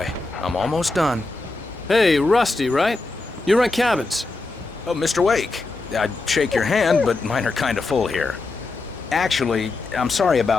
I'm almost done. Hey, Rusty, right? You rent cabins. Oh, Mr. Wake. I'd shake your hand, but mine are kind of full here. Actually, I'm sorry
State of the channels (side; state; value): right; quieter; 3.4 dB